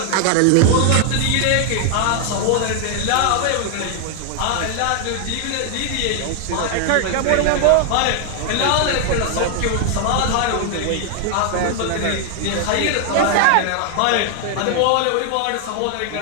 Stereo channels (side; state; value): both; different; correlation 0.00